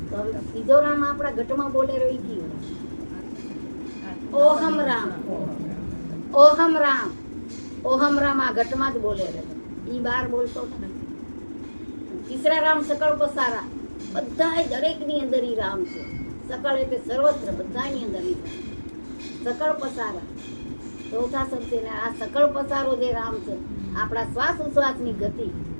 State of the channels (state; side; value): inverted; both; correlation -1.00